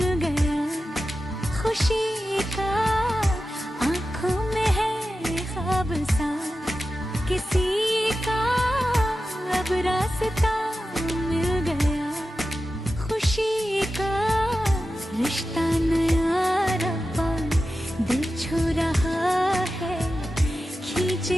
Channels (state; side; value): normal; both; correlation 0.92